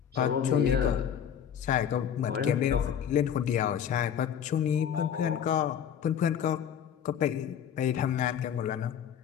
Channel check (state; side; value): quieter; right; 8.8 dB